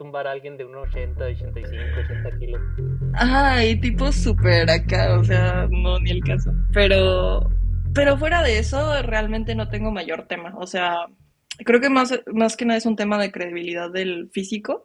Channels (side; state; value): both; identical; correlation 1.00